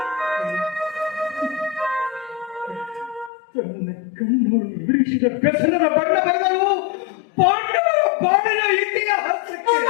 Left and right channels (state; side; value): drops out; right; at 3.3 s